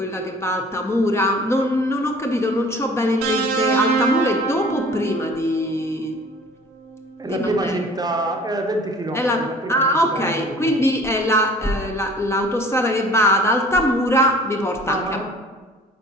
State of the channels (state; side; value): normal; both; correlation 0.48